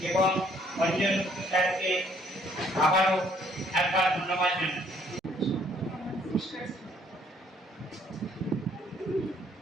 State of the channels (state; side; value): normal; both; correlation 0.64